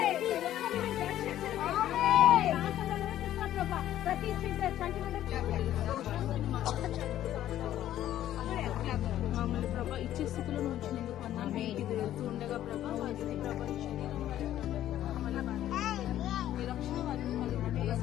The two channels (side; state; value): right; quieter; 12.4 dB